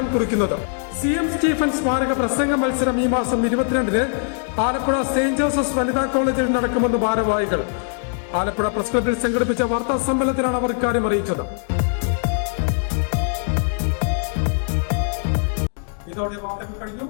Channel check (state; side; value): silent; right; 65 dB below the other